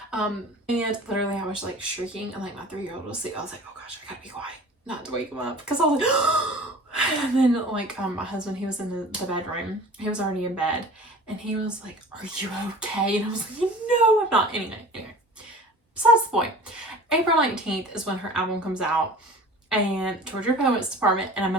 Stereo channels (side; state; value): both; normal; correlation 0.42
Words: And literally I was like shrieking, and like my 3-year-old was asleep. I was like, oh gosh, I gotta be quiet not to wake him up, because I was like, and then like my husband, he was in the bedroom, he was already in bed, and he was like, are you okay? And I was like, no, I'm not. Anyway, besides the point, April 19th is when her album comes out, and Georgia Poets Department, and I'm